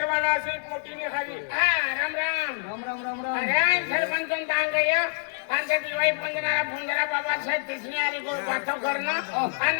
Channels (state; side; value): silent; right; digital silence